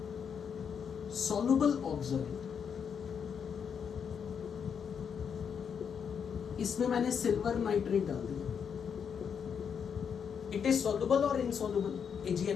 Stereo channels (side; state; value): right; quieter; 7.1 dB